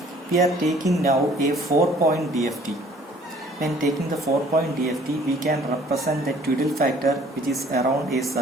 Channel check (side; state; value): both; normal; correlation 0.56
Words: we are taking now a 4-point DFT. When taking the 4-point DFT, we can represent the Twiddle factor, which is around a